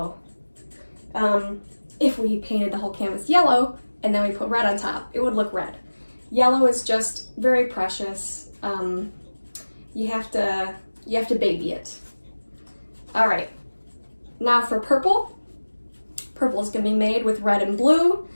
If we painted the whole canvas yellow, and then we put red on top, it would look red. Yellow is just very precious. You have to baby it. All right, now for purple. Purple is gonna be made with red and blue.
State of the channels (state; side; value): inverted; both; correlation -1.00